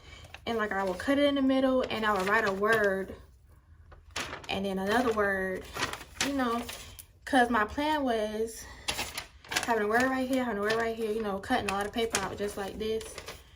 and like I would cut it in the middle and I would write a word and then another word, you know, because my plan was having a word right here, having a word right here, you know, cutting a lot of paper out just like this,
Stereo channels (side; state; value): both; identical; correlation 1.00